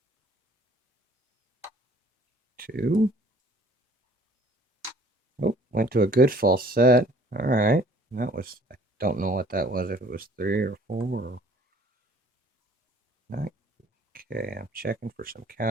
2. Oh, went to a good false set. All right. That was, I don't know what that was, if it was 3 or 4 or 9. Okay, I'm checking for some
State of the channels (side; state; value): both; normal; correlation 0.55